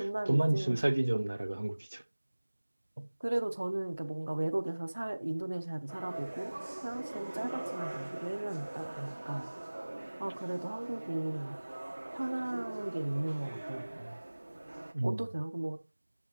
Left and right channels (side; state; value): both; inverted; correlation -1.00